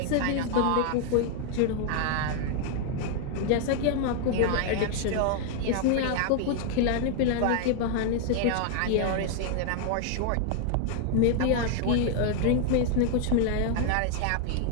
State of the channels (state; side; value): different; both; correlation 0.00